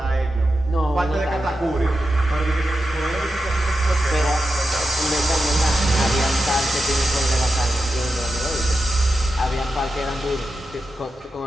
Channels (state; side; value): normal; both; correlation 0.89